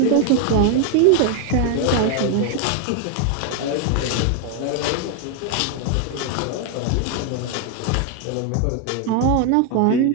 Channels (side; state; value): both; different; correlation 0.01